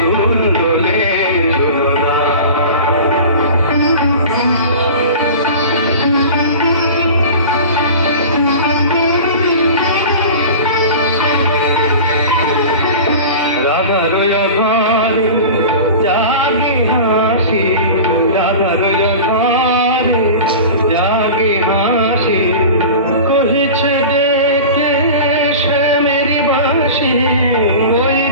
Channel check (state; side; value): inverted; both; correlation -0.35